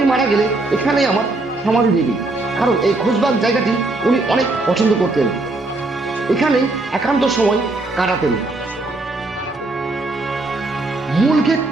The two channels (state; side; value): quieter; left; 3.0 dB